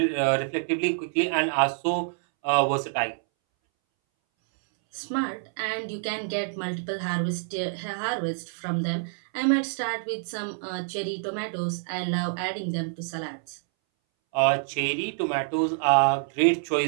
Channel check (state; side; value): silent; left; 60 dB below the other